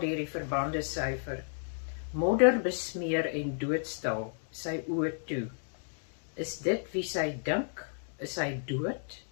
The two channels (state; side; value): silent; right; digital silence